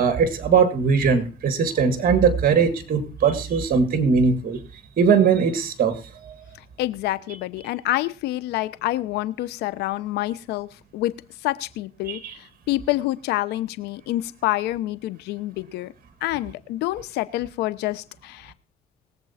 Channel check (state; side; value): normal; both; correlation 0.23